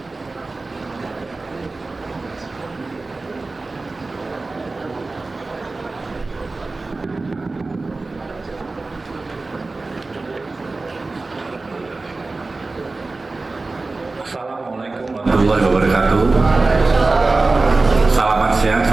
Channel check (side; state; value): left; quieter; 3.5 dB